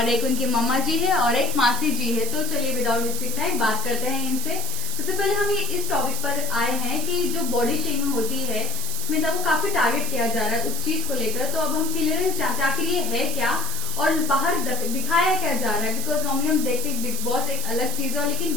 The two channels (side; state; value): right; noise; hiss, 4 dB below the sound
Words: एक उनकी मम्मा जी है और एक मासी जी है। तो चलिए विदाउट वेस्टिंग टाइम बात करते हैं इनसे। सबसे पहले हम इस टॉपिक पर आए हैं कि जो बॉडी शेमिंग होती है स्मिता को काफी टारगेट किया जा रहा है उस चीज को लेकर। तो अब हम क्लियरेंस चाहते हैं आखिर ये है क्या और बाहर दिखाया क्या जा रहा है। बिकॉज नॉर्मली हम देखते हैं बिग बॉस एक अलग चीज है लेकिन